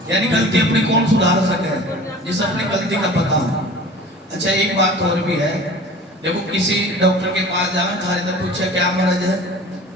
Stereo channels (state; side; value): normal; both; correlation 0.42